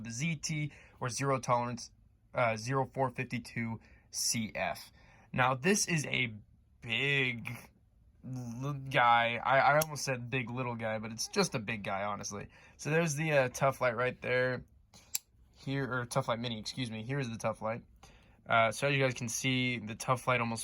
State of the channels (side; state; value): both; identical; correlation 1.00